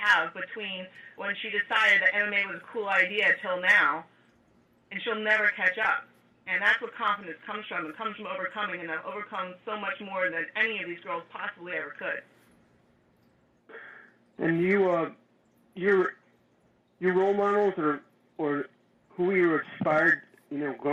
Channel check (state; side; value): identical; both; correlation 1.00